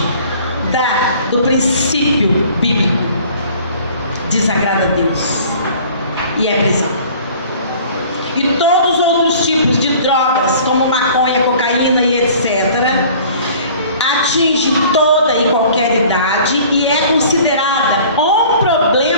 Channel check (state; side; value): inverted; both; correlation -0.49